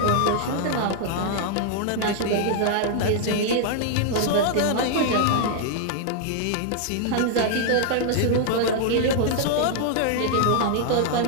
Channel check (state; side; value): different; both; correlation 0.00